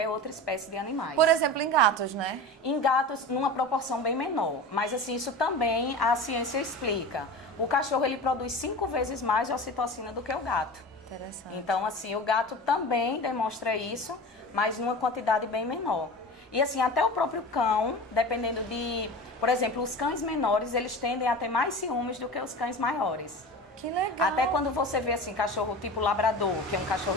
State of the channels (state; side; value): normal; both; correlation 0.32